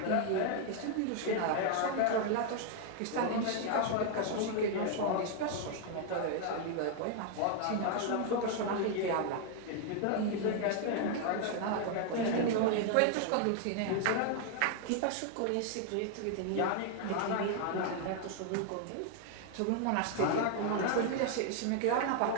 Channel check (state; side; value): different; both; correlation 0.00